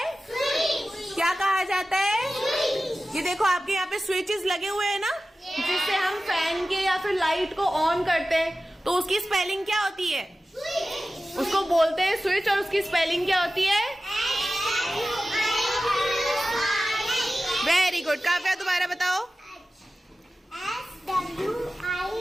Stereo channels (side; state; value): both; normal; correlation 0.95